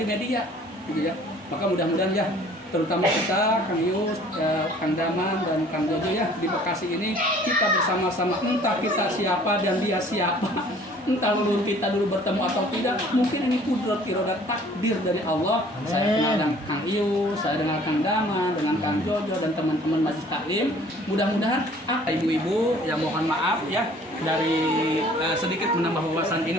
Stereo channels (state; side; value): normal; both; correlation 0.53